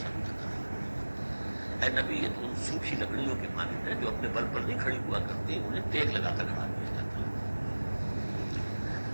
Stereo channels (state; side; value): inverted; both; correlation -1.00